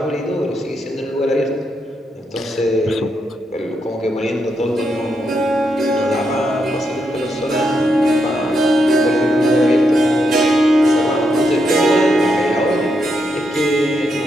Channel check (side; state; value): both; normal; correlation 0.81